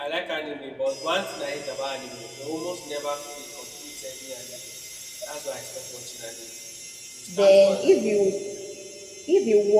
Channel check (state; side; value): identical; both; correlation 1.00